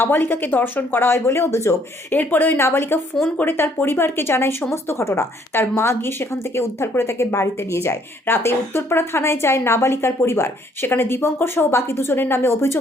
ধর্ষণ করা হয় বলে অভিযোগ। এরপরে ওই নাবালিকা ফোন করে তার পরিবারকে জানায় সমস্ত ঘটনা। তার মা গিয়ে সেখান থেকে উদ্ধার করে তাকে বাড়িতে নিয়ে যায়। রাতে উত্তরপাড়া থানায় যায় নাবালিকার পরিবার। সেখানে দীপঙ্কর সহ বাকি 2 জনের নামে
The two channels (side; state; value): both; normal; correlation 0.65